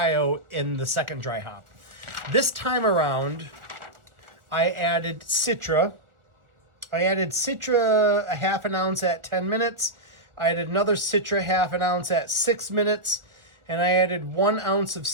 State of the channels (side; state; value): left; late; 1.4 ms